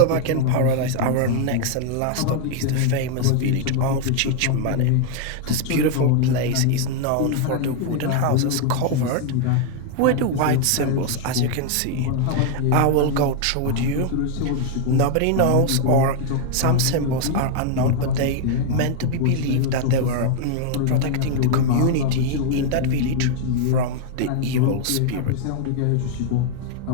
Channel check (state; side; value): different; both; correlation 0.00